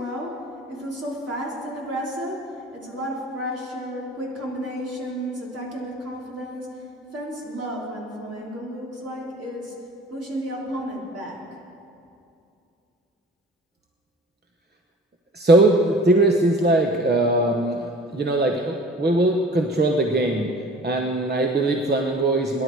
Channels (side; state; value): both; normal; correlation 0.45